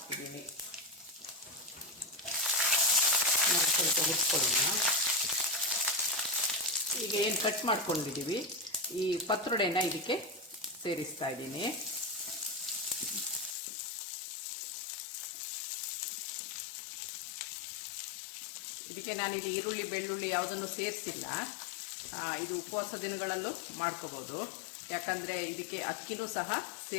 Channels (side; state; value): right; drops out; at 13.6 s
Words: ಸ್ವಲ್ಪ ಹುರ್ಕೊಳ್ಳೋಣ. ಈಗ ಏನು ಕಟ್ ಮಾಡ್ಕೊಂಡಿದ್ದೀವಿ ಈ ಪತ್ರೊಡೆನ ಇದಕ್ಕೆ ಸೇರಿಸ್ತಾ ಇದ್ದೀನಿ. ಇದಕ್ಕೆ ನಾನಿಲ್ಲಿ ಈರುಳ್ಳಿ ಬೆಳ್ಳುಳ್ಳಿ ಯಾವುದನ್ನು ಸೇರಿಸಿಲ್ಲ. ಇದು ಉಪವಾಸ ದಿನಗಳಲ್ಲೂ ಮಾಡ್ಕೋಬೋದು. ಯಾಕಂದರೆ ಇದಕ್ಕೆ ಅಕ್ಕಿನೂ ಸಹ